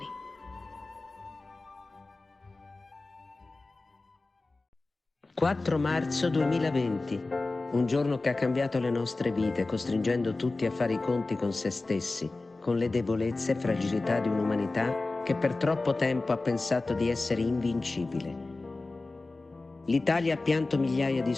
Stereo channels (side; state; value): right; quieter; 3.3 dB